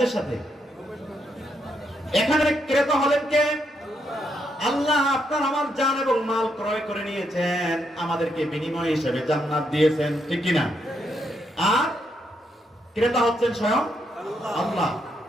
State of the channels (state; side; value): normal; both; correlation 0.78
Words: সাথে? এখানে ক্রেতা হলেন কে? আল্লাহ। আপনার আমার জান এবং মাল ক্রয় করে নিয়েছেন, আমাদেরকে বিনিময় হিসেবে জান্নাত দিয়েছেন, ঠিক কি না? আর ক্রেতা হচ্ছেন স্বয়ং আল্লাহ,